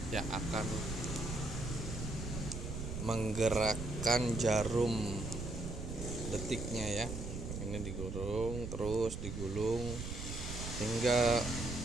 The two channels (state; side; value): noise; right; rumble, 6 dB below the sound